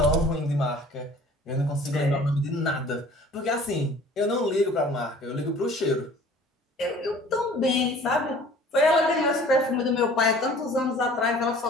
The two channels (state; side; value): normal; both; correlation 0.49